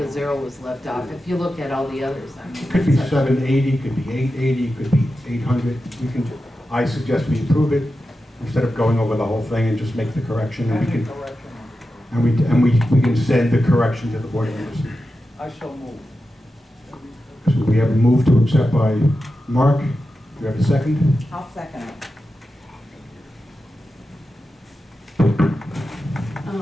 zero was left off. If you look at all the others, I mean, It could be 780, could be 880, could be 800. I suggest we approve it instead of going over the whole thing and just make the correction, and we can send the correction to the board members. I shall move. So we have a move to accept by Mark. Do you have a second? I'll second it.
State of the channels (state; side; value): normal; both; correlation 0.91